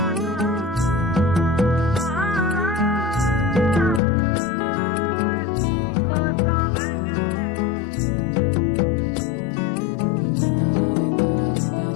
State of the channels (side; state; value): right; drops out; at 4.0 s